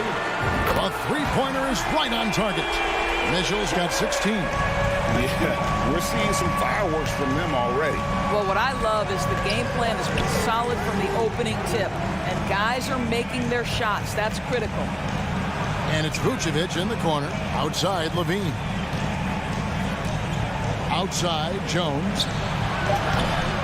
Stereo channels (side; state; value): both; identical; correlation 1.00